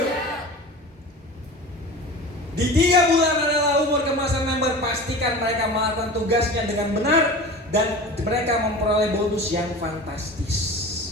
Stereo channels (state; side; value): normal; both; correlation 0.34